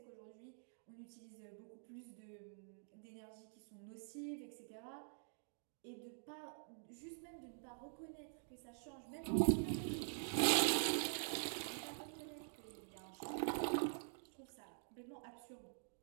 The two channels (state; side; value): silent; left; digital silence